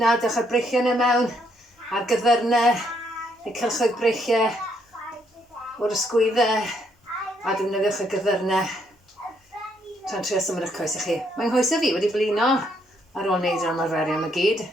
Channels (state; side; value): normal; both; correlation 0.72